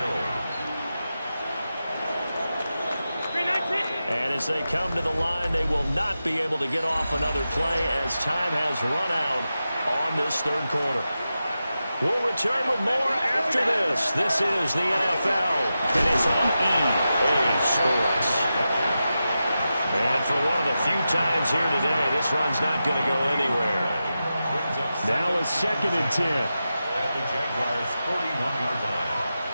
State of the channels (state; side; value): inverted; both; correlation -0.91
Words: And as they come to the line, they will not be able to get off another play as time has run out on this third quarter. We'll return with more after this. This is the NFL, and it's on EA Sports. And for one of the few times here today, this run's not going to go anywhere. Now it's second and 10. At the Jaguars' 41-yard line.